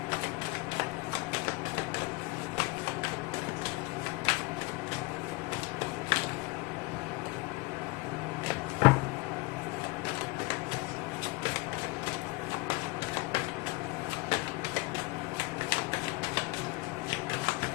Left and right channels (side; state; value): right; quieter; 23.0 dB